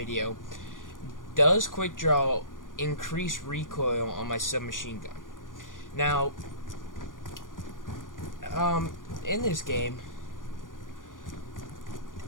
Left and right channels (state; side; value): late; right; 0.89 ms